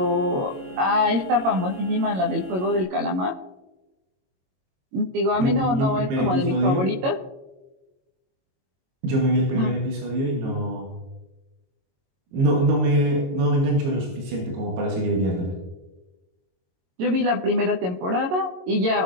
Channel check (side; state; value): left; late; 22 ms